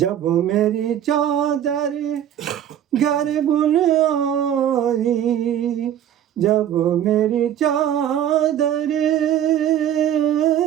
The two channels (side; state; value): left; quieter; 10.4 dB